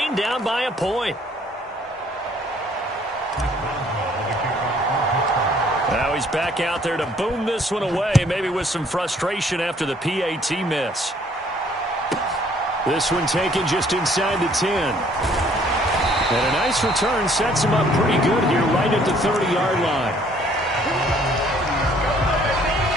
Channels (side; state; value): both; normal; correlation 0.61